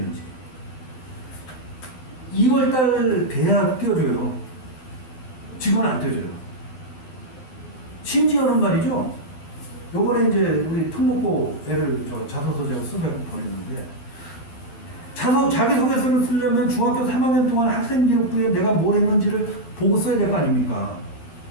2월달 돼야 띄워줘요. 지금은 안 띄워줘요. 심지어는 말이죠. 요번에 이제 우리 특목고 애를 자소서 제가 수배하고 보냈는데 자기소개서를 쓰려면 중학교 3학년 동안 학생기록부에 내가 뭘 했는지를 보고 써야 될 거 아닙니까?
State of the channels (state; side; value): late; right; 12 ms